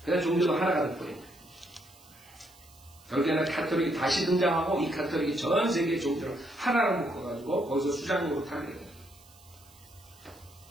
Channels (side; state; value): right; noise; hiss, 25 dB below the sound